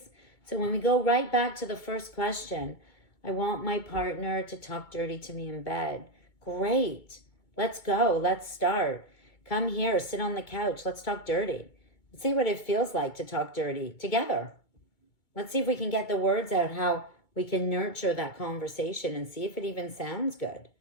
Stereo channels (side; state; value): right; late; 2.2 ms